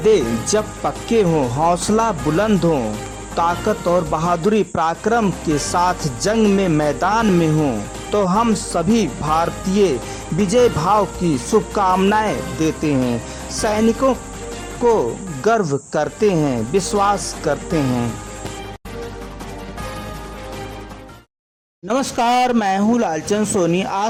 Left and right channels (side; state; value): both; identical; correlation 1.00